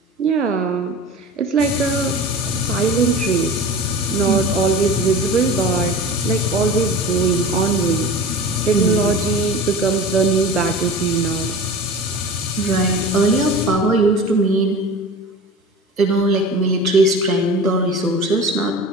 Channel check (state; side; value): normal; both; correlation 0.36